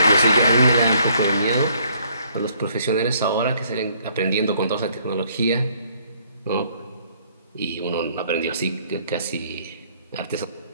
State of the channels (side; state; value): both; inverted; correlation -0.64